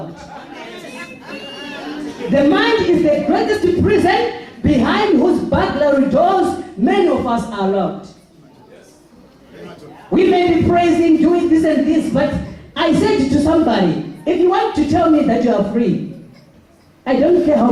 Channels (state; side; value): identical; both; correlation 1.00